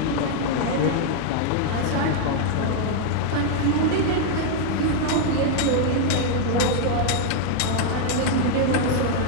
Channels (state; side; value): different; both; correlation 0.00